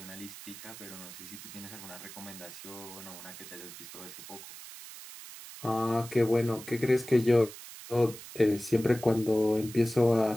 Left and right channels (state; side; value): noise; right; hiss, 14 dB below the sound